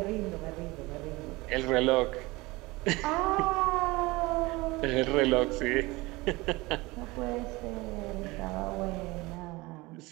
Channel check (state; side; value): quieter; left; 22.2 dB